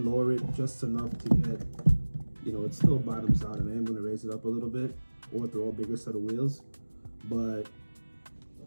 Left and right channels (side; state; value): both; inverted; correlation -1.00